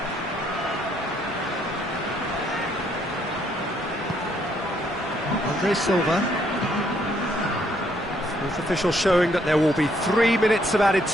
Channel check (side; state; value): left; noise; rumble, 22 dB below the sound